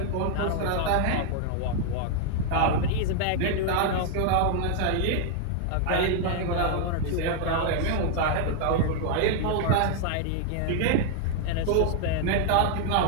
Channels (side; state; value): both; different; correlation 0.00